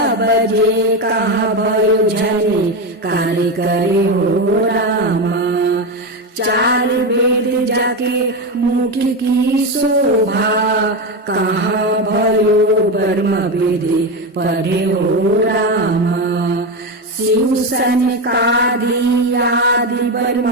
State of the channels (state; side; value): normal; both; correlation 0.14